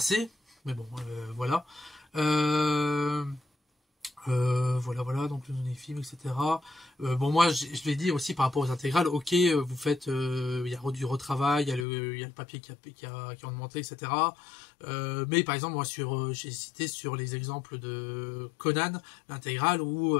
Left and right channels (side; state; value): right; drops out; at 11.9 s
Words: mais bon, voilà. Voilà, donc les films, etc. Bon, moi, je l'ai dit aussi par rapport aux intégrales, ok, vous faites, il y a du retravail, il y a le papier qui a augmenté, etc. Mais par exemple, moi, j'ai cité sur les exemples de Conan, l'intégrale, où